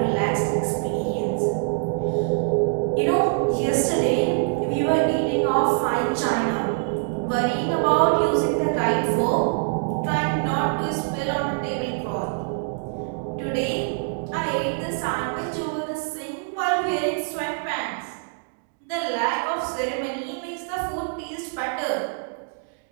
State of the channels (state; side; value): silent; left; digital silence